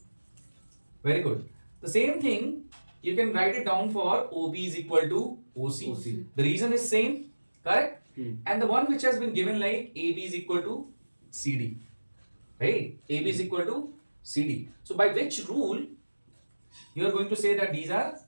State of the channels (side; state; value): both; inverted; correlation -1.00